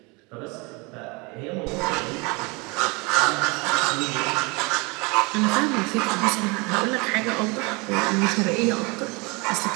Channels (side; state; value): left; quieter; 27.7 dB